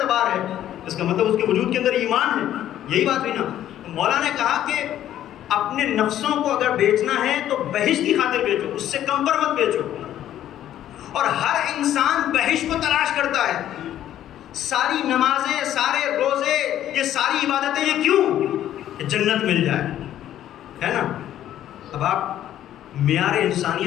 ہے، اس کا مطلب اس کے وجود کے اندر ایمان ہے. یہی بات ہوئی نا. مولا نے کہا کہ اپنے نفسوں کو اگر بیچنا ہے تو بہشت کی خاطر بیچو، اس سے کم پر مت بیچو. اور ہر انسان بہشت کو تلاش کرتا ہے. ساری نمازیں، سارے روزے، یہ ساری عبادتیں، یہ کیوں؟ کہ جنت مل جائے، ہے نا. اب آپ معیار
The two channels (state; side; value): quieter; right; 11.8 dB